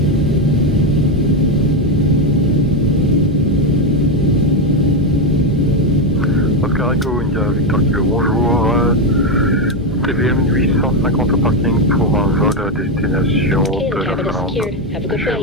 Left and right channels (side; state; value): both; normal; correlation 0.08